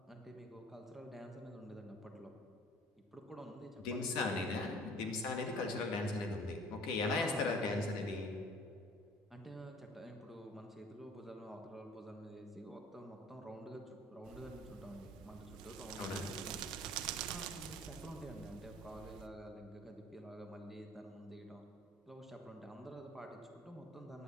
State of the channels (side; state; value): both; normal; correlation 0.51